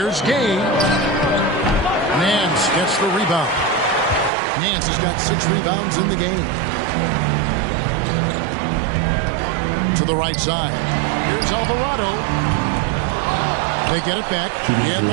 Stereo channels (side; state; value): left; drops out; at 4.3 s